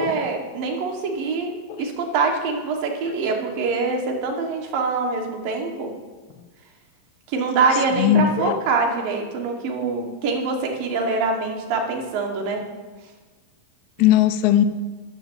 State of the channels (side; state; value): left; late; 11 ms